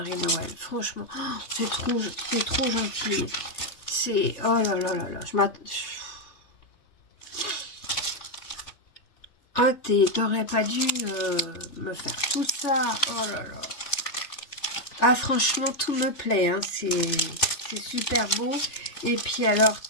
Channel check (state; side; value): late; right; 3.5 ms